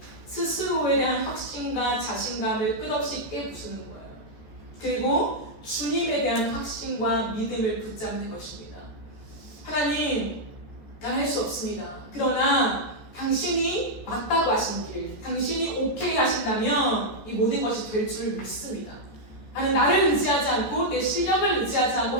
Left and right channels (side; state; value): right; late; 14 ms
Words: 스스로에 대한 확신과 자신감을 끝없이 깨부수는 거예요. 그리고 주님에 대한 확신과 믿음을 붙잡는 것입니다. 하나님, 난 할 수 없습니다. 그러나 당신이 맞다고 하신 길, 당신이 오케이 하신다면 이 모든 것이 될 줄 믿습니다. 나는 나를 의지하지 않고 내 실력을 의지하지 않고